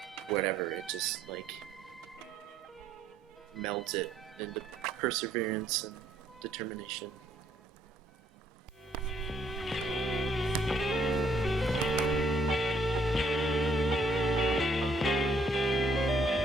whatever, it just like melds it into perseverance and determination.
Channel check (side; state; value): both; normal; correlation 0.67